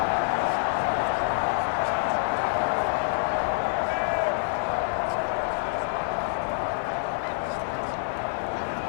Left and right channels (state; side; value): silent; right; 60 dB below the other